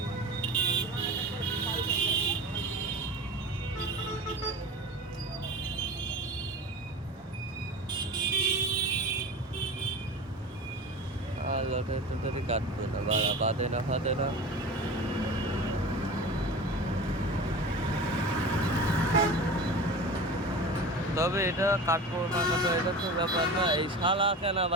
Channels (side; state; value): both; normal; correlation 0.33